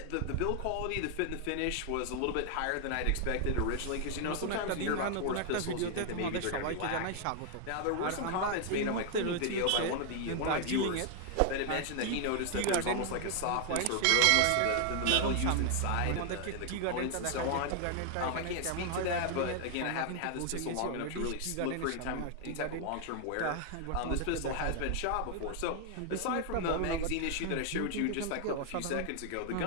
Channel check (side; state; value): both; different; correlation 0.00